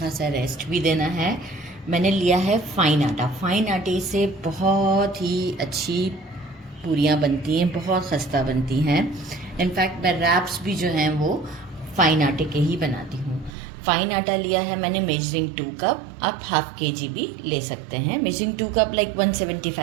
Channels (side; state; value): left; drops out; at 13.5 s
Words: रेस्ट भी देना है, मैंने लिया है फाइन आटा। फाइन आटे से बहुत ही अच्छी पूरियाँ बनती हैं, बहुत खस्ता बनती हैं। इनफैक्ट मैं रैप्स भी जो हैं वो फाइन आटे के ही बनाती हूँ। फाइन आटा लिया है मैंने मेजरिंग 2 कप, आप हाफ kg भी ले सकते हैं। मेजरिंग 2 कप लाइक